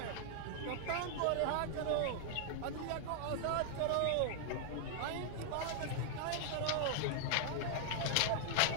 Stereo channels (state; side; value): different; both; correlation 0.00